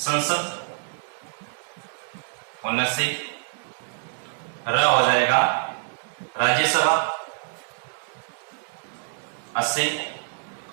79, र हो जाएगा राज्यसभा 80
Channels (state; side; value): silent; left; digital silence